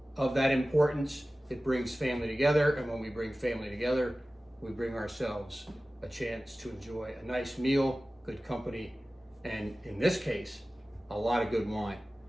of that importance, it brings family together. And when we bring family together, we bring ourselves a chance to enjoy a nice meal, good company, and in this case, a lot of good wine.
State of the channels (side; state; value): both; normal; correlation 0.96